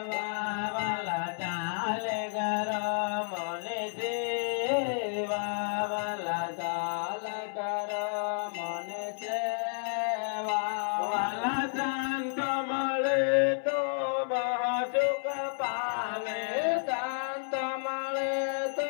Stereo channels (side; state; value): right; silent; 57 dB below the other